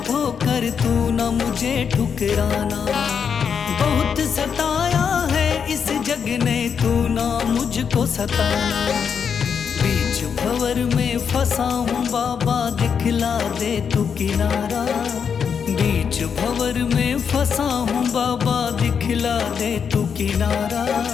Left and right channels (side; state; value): right; quieter; 6.9 dB